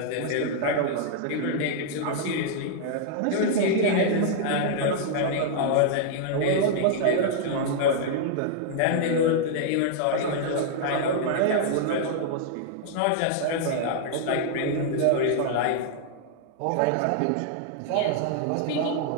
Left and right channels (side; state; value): both; different; correlation -0.01